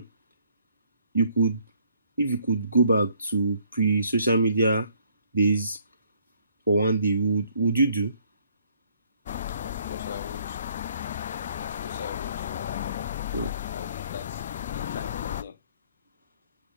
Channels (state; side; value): inverted; both; correlation -0.63